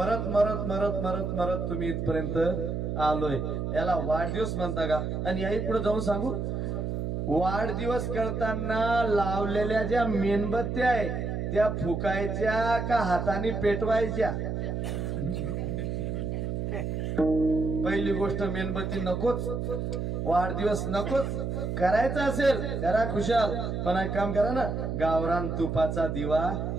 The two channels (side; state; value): right; noise; hum, 2 dB below the sound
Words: मरत मरत मरत मरत तुम्ही इथपर्यंत आलोय. याला वाढदिवस म्हणता का? आणि याही पुढे जाऊन सांगू, वाढदिवस करताना लावलेल्या ज्या मेणबत्त्या आहे त्या फुकायच्या का हाताने पेटवायच्या? पहिली गोष्ट, मेणबत्ती नकोच, वाढदिवस नकोच. करायचा असेल करा खुशाल, पण एक काम करा ना, गावरान तुपाचा दिवा